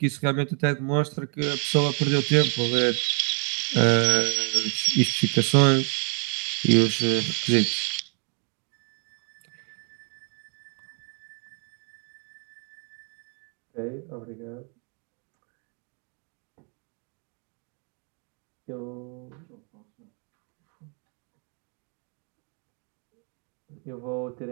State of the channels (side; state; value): left; quieter; 35.5 dB